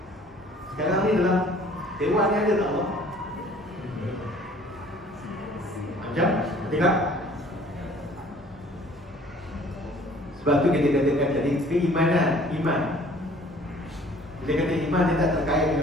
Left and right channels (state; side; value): normal; both; correlation 0.53